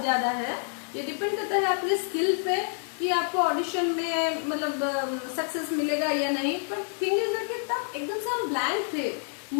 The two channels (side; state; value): right; silent; 59 dB below the other